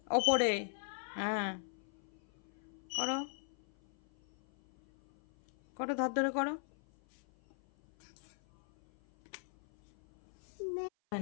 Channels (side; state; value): right; silent; 51 dB below the other